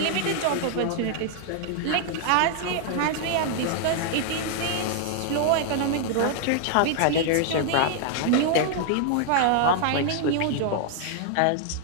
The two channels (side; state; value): both; different; correlation 0.00